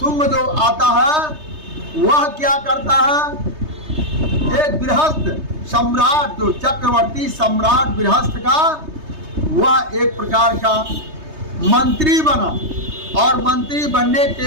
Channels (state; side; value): late; left; 3.3 ms